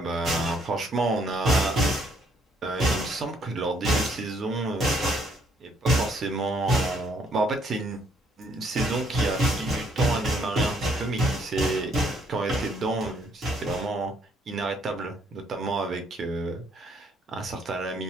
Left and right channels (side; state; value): both; normal; correlation 0.68